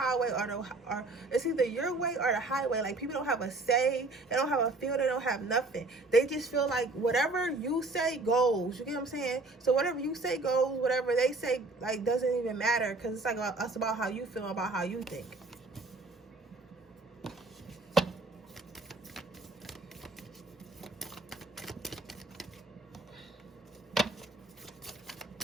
or it's either your way or the highway. Like, people don't have a say. They don't have a feel. They don't have nothing. They just feel like whatever you say goes. You get what I'm saying? So whatever you say goes. Whatever they say, like, doesn't even matter, because it's like about how you feel, about how you think.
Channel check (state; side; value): quieter; left; 3.2 dB